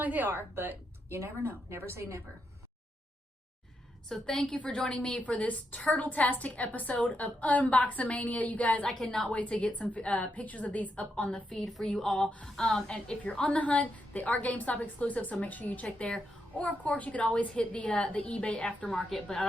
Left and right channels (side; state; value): both; normal; correlation 0.82